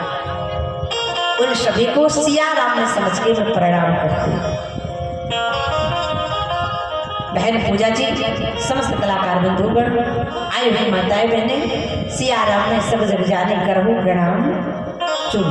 उन सभी को सिया राम ने समझ के मैं प्रणाम करती हूँ। बहन पूजा जी, समस्त कलाकार बंधुगण, आए हुए माताएं बहने, सिया राम ने सब जग जाने करहु प्रणाम चुन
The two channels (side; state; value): both; identical; correlation 1.00